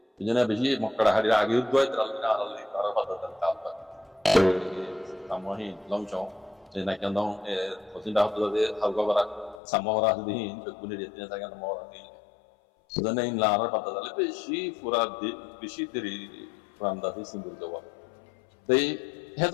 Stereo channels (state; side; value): drops out; right; at 9.6 s